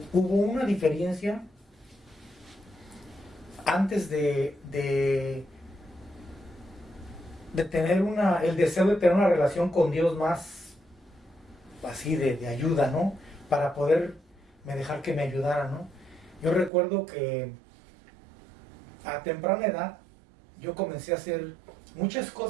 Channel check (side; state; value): left; drops out; at 16.7 s